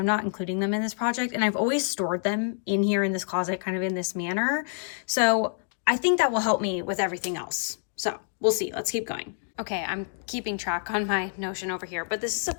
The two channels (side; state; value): right; silent; digital silence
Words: not including them in this project. And I've always stored them in here in this closet, kind of in this manner. So I think that will help me with everything else. So we'll see. Let's keep going. Okay, I'm keeping track on my Notion over here, but this is a